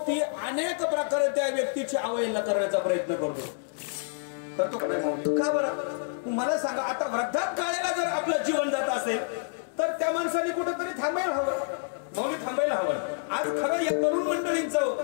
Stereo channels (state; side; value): silent; right; digital silence